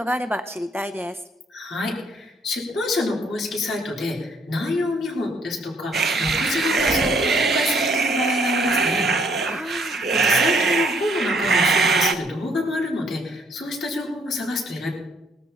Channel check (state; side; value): normal; both; correlation 0.65